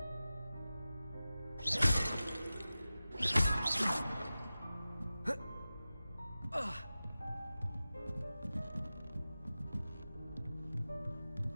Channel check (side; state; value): both; inverted; correlation -0.95